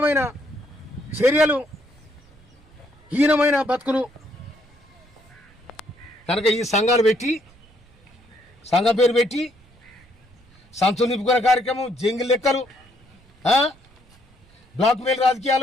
చర్యలు, హీనమైన బతుకులు కనుక ఈ సంఘాలు పెట్టి, సంఘం పేరు పెట్టి సంచులు నింపుకునే కార్యక్రమం, జంగిల్ లెక్కలు, బ్లాక్ మెయిల్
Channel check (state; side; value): noise; right; rumble, 28 dB below the sound